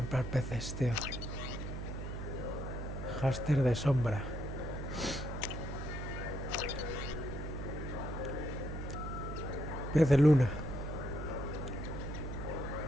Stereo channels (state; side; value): noise; right; hum, 5 dB below the sound